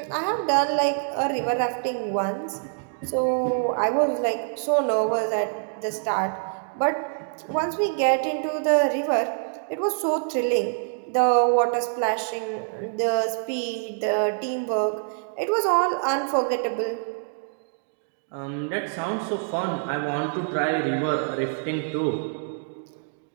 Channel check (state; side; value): silent; left; digital silence